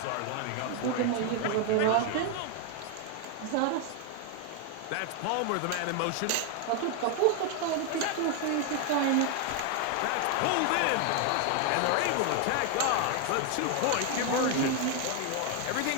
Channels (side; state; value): both; different; correlation 0.01